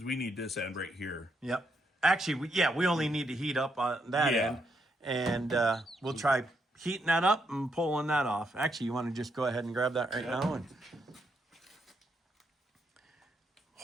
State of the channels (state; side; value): normal; both; correlation 0.78